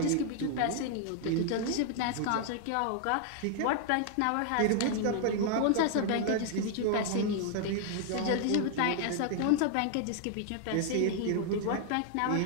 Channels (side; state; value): both; different; correlation 0.00